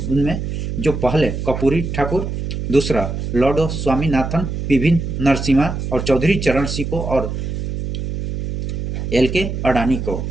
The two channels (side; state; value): right; noise; hum, 4 dB below the sound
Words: जो पहले कर्पूरी ठाकुर, दूसरा लॉर्ड स्वामीनाथन, पीवी नरसिम्हा और चौधरी चरण सिंह को और LK अडानी को।